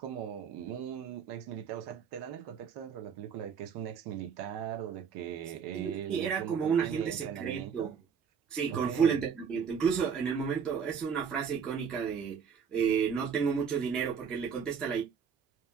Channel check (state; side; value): quieter; left; 6.8 dB